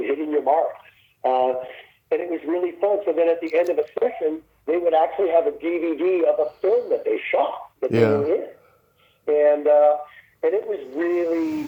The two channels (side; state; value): both; identical; correlation 1.00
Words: your mark. And it was really fun. So then at the end of a session, they would actually have a DVD of a film that they shot that they were in, and it was